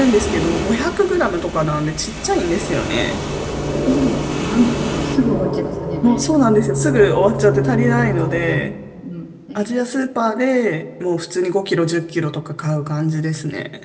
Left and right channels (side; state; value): both; identical; correlation 1.00